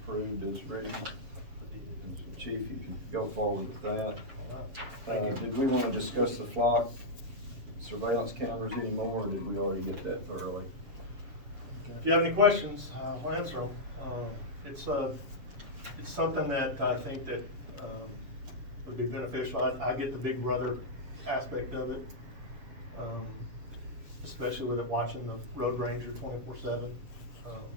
as written. And so, Chief, if you could go forward with that. Did we wanna discuss the flock surveillance cameras anymore, or did we already get that thoroughly? If you have any questions, I'll answer them. It's something that I think that, would be beneficial. I get the big brother aspect of it. Especially with it watching the road ranger 24/7.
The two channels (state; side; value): late; left; 7.2 ms